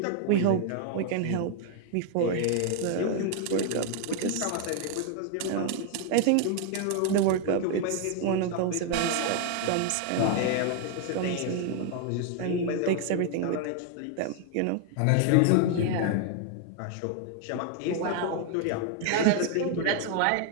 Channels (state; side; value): different; both; correlation 0.00